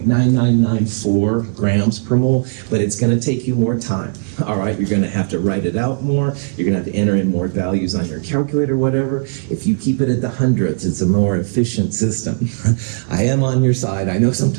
grams per mole, but it's going to take you more time. All right, you're going to have to write it out more. You're going to have to enter in more values on your calculator, whatever. If you keep it at the hundredths, it's a more efficient system. I am on your side. I know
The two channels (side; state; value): left; silent; digital silence